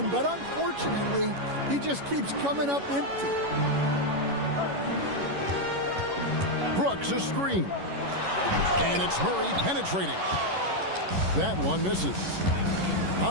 but unfortunately, he just keeps coming up empty. Brooks a screen. And it's Murray penetrating. That one misses.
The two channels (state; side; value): late; left; 11 ms